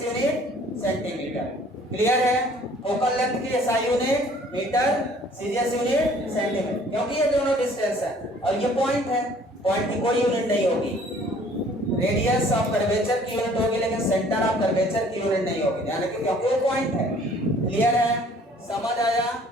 यूनिट सेंटीमीटर। क्लियर है? फोकल लेंथ की एसआई यूनिट मीटर, सीरियस यूनिट सेंटीमीटर, क्योंकि ये दोनों डिस्टेंस है और ये पॉइंट है। पॉइंट की कोई यूनिट नहीं होगी। रेडियस ऑफ कर्वेचर की यूनिट होगी, लेकिन सेंटर ऑफ कर्वेचर की यूनिट नहीं होगी, ध्यान रखिए, क्योंकि वो पॉइंट है। क्लियर है? समझ आया?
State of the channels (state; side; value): normal; both; correlation 0.55